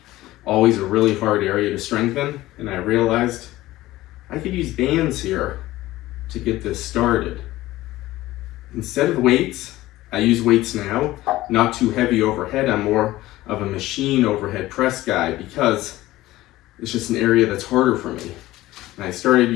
always a really hard area to strengthen, and I realized I could use bands here to get this started. Instead of weights, I use weights now, not too heavy overhead. I'm more of a machine overhead press guy because it's just an area that's harder for me. And I started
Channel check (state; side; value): quieter; right; 16.8 dB